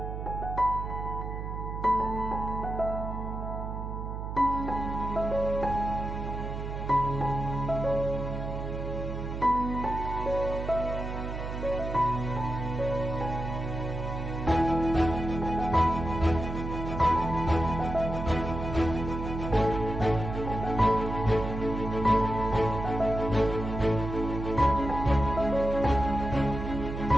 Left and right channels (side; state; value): right; noise; hum, 5 dB below the sound